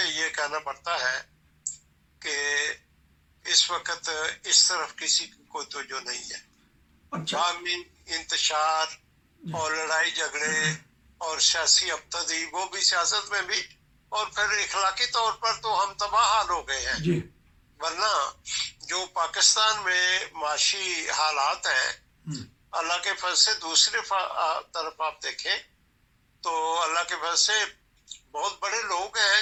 یہ کہنا پڑتا ہے کہ اس وقت اس طرف کسی کو توجہ نہیں ہے. باہمی انتشار اور لڑائی جھگڑے اور سیاسی ابتدی, وہ بھی سیاست میں بھی, اور پھر اخلاقی طور پر تو ہم تباہ حال ہو گئے ہیں. جی. ورنہ جو پاکستان میں معاشی حالات ہیں, اللہ کے فضل سے دوسری طرف آپ دیکھیں تو اللہ کے فضل سے بہت بڑے لوگ ہیں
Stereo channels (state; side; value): identical; both; correlation 1.00